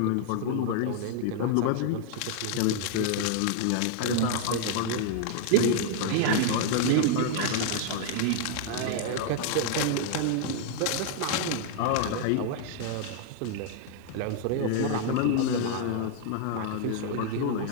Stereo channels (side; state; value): both; different; correlation 0.00